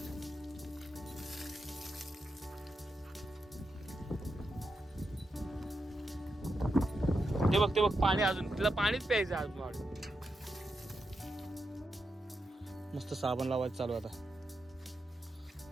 बस ते बघ पाणी, अजून तिला पाणीच प्यायचं अजून. मस्त साबण लावायचं चालू आता.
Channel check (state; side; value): normal; both; correlation 0.86